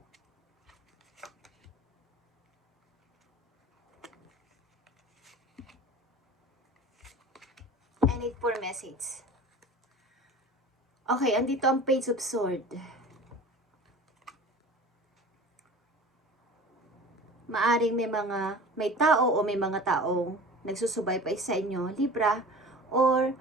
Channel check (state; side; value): normal; both; correlation 0.39